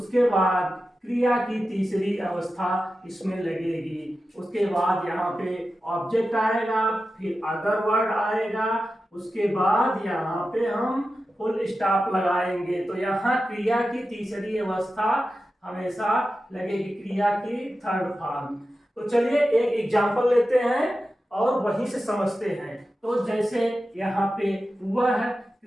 बाद क्रिया की तीसरी अवस्था इसमें लगेगी, उसके बाद यहाँ पे ऑब्जेक्ट आएगा, फिर अदर वर्ड आएगा, उसके बाद यहाँ पे हम फुल स्टॉप लगाएंगे। तो यहाँ क्रिया की तीसरी अवस्था हमेशा लगेगी, क्रिया की थर्ड फॉर्म। तो चलिए एक एग्जांपल लेते हैं और वहीं से समझते हैं। तो जैसे यहाँ पे वह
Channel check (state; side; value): normal; both; correlation 0.92